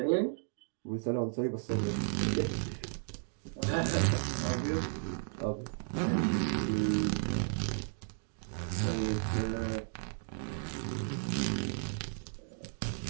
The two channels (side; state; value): left; silent; digital silence